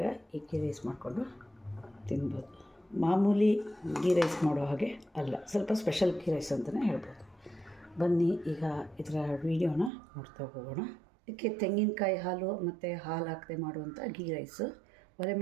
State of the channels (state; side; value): drops out; left; at 9.9 s